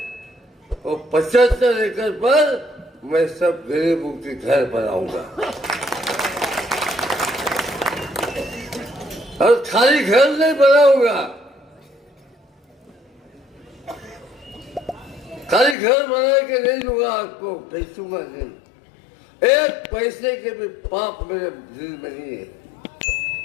और 75 एकड़ पर मैं सब गरीबों के घर बनाऊंगा। और खाली घर नहीं बनाऊंगा, खाली घर बना के नहीं दूंगा आपको, बेचूंगा नहीं। एक पैसे के भी पाप मेरे दिल में नहीं है।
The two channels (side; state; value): right; drops out; at 15.8 s